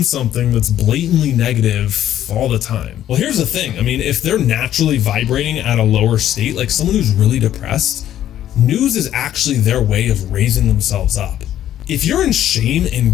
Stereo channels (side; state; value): right; quieter; 11.7 dB